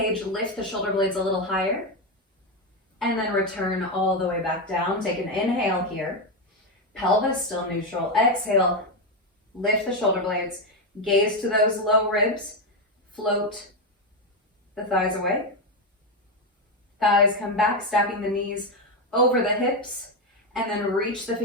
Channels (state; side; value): normal; both; correlation 0.08